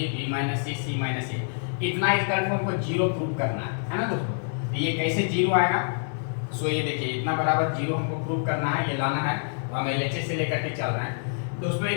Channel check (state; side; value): silent; right; 60 dB below the other